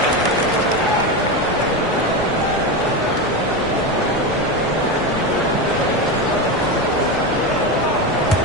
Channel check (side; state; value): both; normal; correlation 0.17